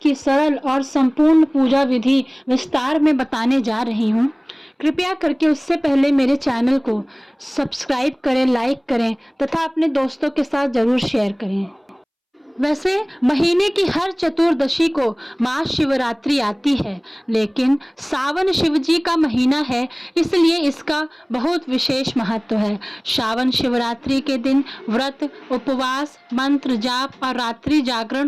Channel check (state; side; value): identical; both; correlation 1.00